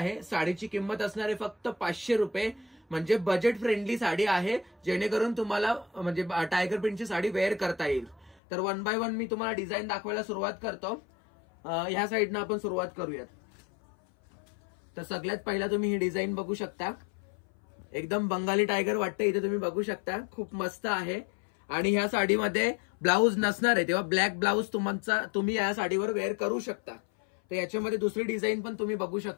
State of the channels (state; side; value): drops out; right; at 8.4 s